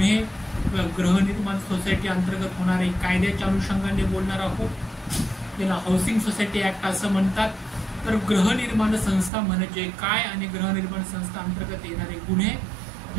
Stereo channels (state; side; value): drops out; left; at 9.3 s